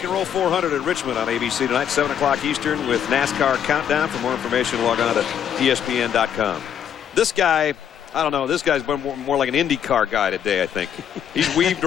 and Roll 400 at Richmond on ABC tonight, 7 o'clock Eastern with NASCAR Countdown. For more information, log on to ESPN.com. This guy, I don't know, this guy's been more like an IndyCar guy today, I think. He's weaved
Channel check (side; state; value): right; quieter; 9.0 dB